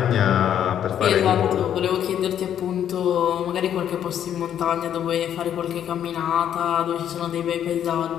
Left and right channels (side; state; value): right; quieter; 9.9 dB